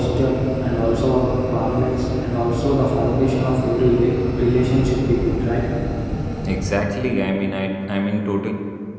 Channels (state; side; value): identical; both; correlation 1.00